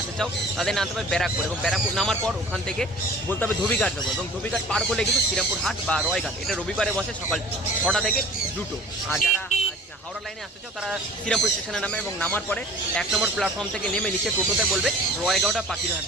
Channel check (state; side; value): normal; both; correlation 0.46